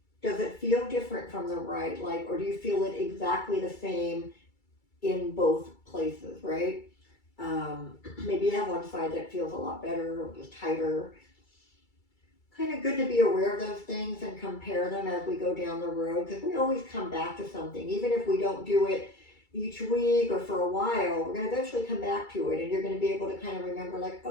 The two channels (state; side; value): late; right; 2.3 ms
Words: does it feel different from the right? Like, or do you feel it exactly the same in both places, right? Maybe you have one side that feels a lot better or just tighter. Kind of good to be aware of those things and compare them as we go down the road, because we always come back to something. Even if we don't do it each week or for a while, we're going to eventually come back to it, and you're going to be able to kind of remember, like,